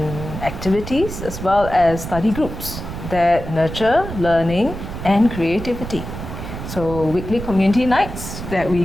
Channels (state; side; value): noise; right; rumble, 9 dB below the sound